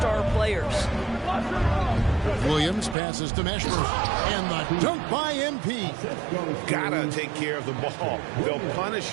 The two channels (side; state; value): left; drops out; at 3.0 s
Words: players. Williams passes to Meshburn, and the dunk by MP. Gotta take care of the ball. They'll punish